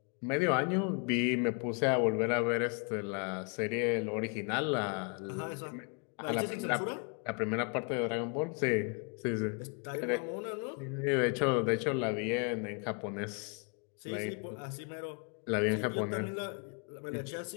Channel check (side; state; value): right; quieter; 36.9 dB